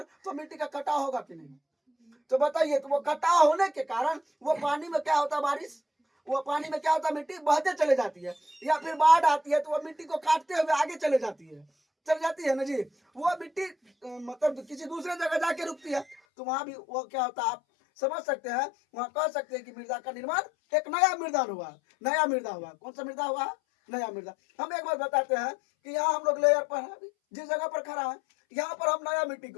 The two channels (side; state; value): right; drops out; at 16.2 s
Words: तो मिट्टी का कटाव होगा कि नहीं? तो बताइए, तो वो कटाव होने के कारण वो पानी में क्या होता है? बारिश, वो पानी में क्या होता है? मिट्टी बहते चले जाती है या फिर बाढ़ आती है तो वो मिट्टी को काटते हुए आगे चले जाती है ना जी। वो मिट्टी मतलब किसी दूसरे जगह जाके रुकती है तो वहां भी वो क्या होता है आप समझ सकते हैं। वहां कह सकते हैं कि मृदा का निर्माण एक नया मृदा हुआ। कौन सा मृदा हुआ? नया मृदा। हम एक बार बताते हैं कि यहाँ हम लोग लेयर पर है, जिस जगह पर खड़ा है यहाँ पर हम नया मिट्टी